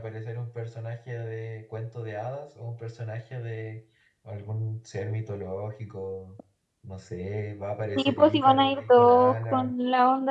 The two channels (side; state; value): both; identical; correlation 1.00